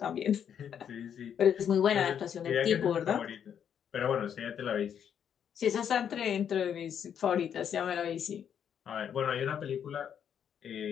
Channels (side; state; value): right; quieter; 8.5 dB